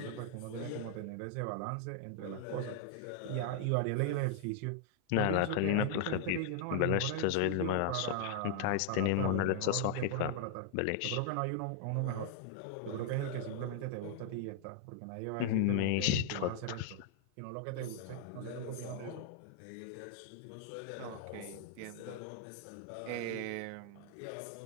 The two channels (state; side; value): different; both; correlation 0.00